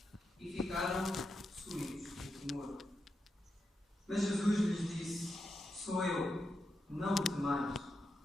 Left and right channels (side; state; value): both; normal; correlation 0.86